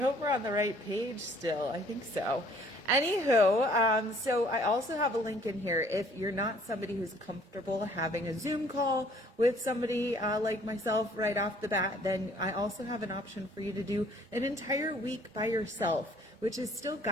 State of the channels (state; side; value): normal; both; correlation 0.58